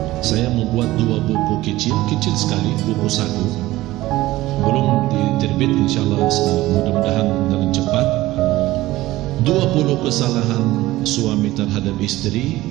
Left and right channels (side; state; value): left; quieter; 17.1 dB